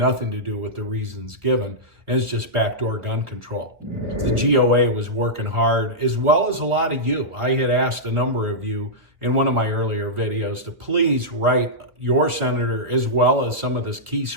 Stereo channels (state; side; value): late; left; 1.3 ms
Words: to do with the reasons given, and it's just backdoor gun control. The GOA was working hard, as well as a lot of you. I had asked a number of you in one of my earlier videos to please write your senator, as well as some of the key